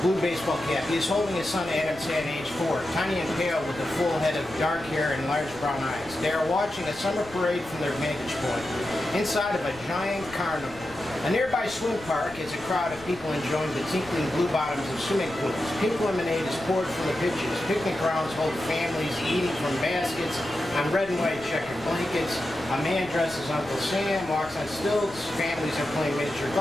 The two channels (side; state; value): left; noise; rumble, 19 dB below the sound